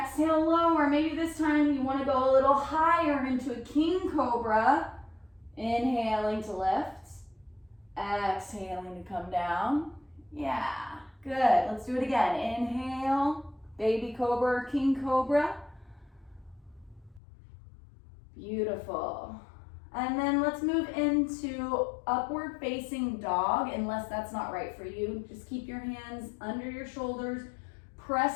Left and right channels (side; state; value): right; drops out; at 17.2 s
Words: lower. Maybe this time you want to go a little higher into a King Cobra. Inhaling to lift. Exhaling to come down. Yeah, good. Let's do it again. Inhale, Baby Cobra or King Cobra. Beautiful. And then let's move into upward facing dog, unless that's not right for you. Just keep your hands under your shoulders.